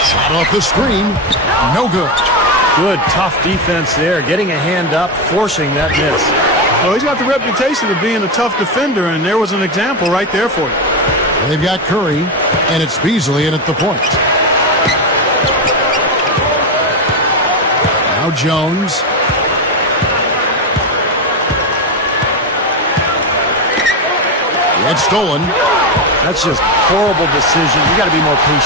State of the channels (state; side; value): normal; both; correlation 0.12